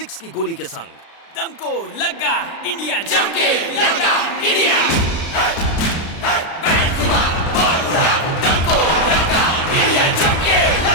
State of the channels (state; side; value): late; right; 36 ms